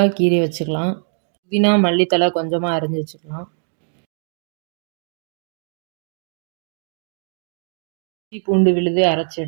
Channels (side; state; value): left; silent; digital silence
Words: கீறி வச்சுக்கலாம். புதினா மல்லித்தலை கொஞ்சமாக அரிஞ்சு வச்சுக்கலாம். இஞ்சி பூண்டு விழுது அரைச்சி